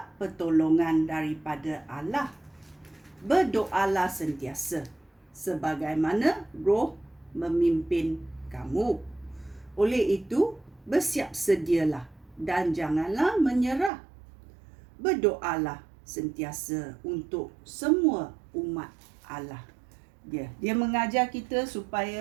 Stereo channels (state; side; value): drops out; left; at 13.9 s